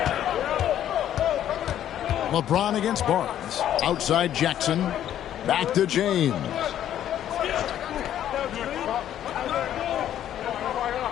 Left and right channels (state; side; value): quieter; right; 11.1 dB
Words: LeBron against Barnes. Outside Jackson. Back to James.